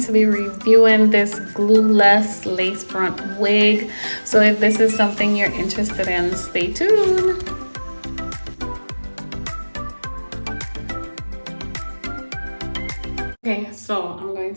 to be reviewing this glueless lace front wig. So if this is something you're interested in, stay tuned. Okay, so I'm going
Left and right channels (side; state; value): both; inverted; correlation -1.00